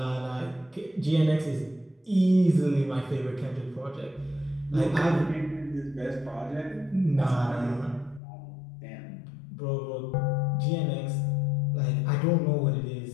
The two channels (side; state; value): right; drops out; at 8.2 s